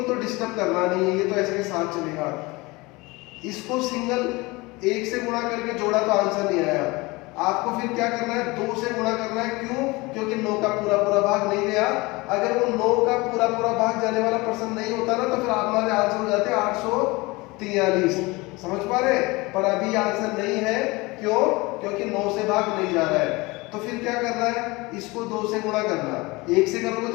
तो डिस्टर्ब करना नहीं है, ये तो ऐसे के साथ चलेगा। इसको सिंगल 1 से गुणा करके जोड़ा तो आंसर नहीं आया, आपको फिर क्या करना है, 2 से गुणा करना है। क्यों? क्योंकि 9 का पूरा पूरा भाग नहीं गया। अगर वो 9 का पूरा पूरा भाग जाने वाला प्रश्न नहीं होता ना, तो फिर हमारे आंसर हो जाते 843। समझ पा रहे? पर अभी आंसर नहीं है, क्यों? क्योंकि 9 से भाग नहीं जा रहा है। तो फिर क्या करना है, इसको 2 से गुणा करना। 1 से करोगे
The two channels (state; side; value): quieter; right; 23.4 dB